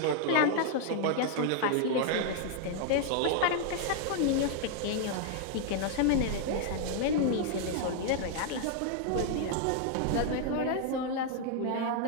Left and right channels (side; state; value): both; different; correlation 0.00